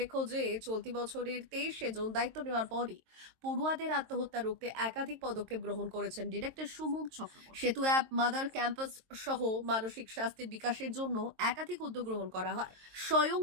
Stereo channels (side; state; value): left; late; 22 ms